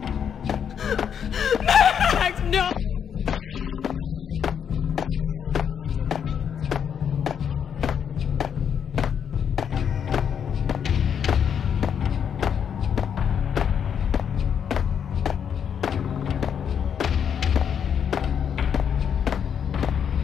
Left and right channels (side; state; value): right; quieter; 7.9 dB